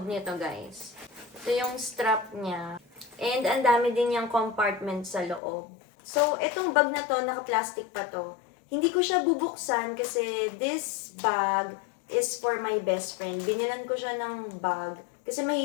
nito, guys. Ito yung strap niya. And ang dami din yung compartment sa loob. So, itong bag na to, naka-plastic pa to. Hindi ko siya bubuksan kasi this bag is for my best friend. Binilan ko siya ng bag kasi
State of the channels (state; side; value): drops out; right; at 5.4 s